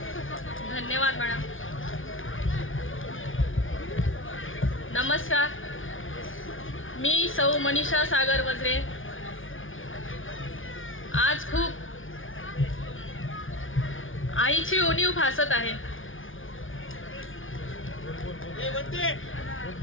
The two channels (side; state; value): right; late; 0.58 ms